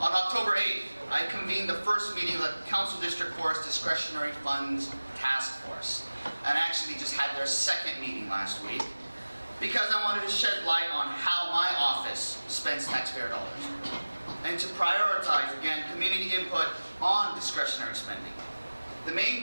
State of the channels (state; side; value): inverted; both; correlation -1.00